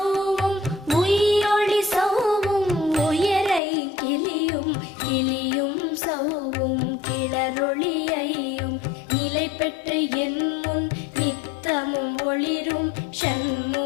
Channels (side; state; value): right; drops out; at 3.6 s